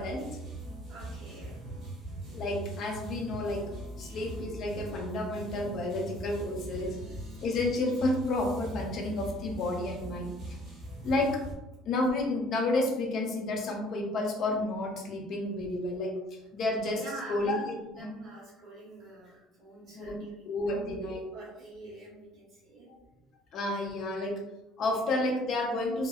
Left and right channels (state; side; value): normal; both; correlation 0.56